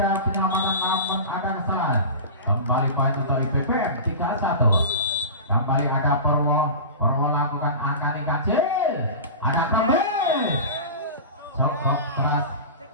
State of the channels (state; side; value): inverted; both; correlation -0.30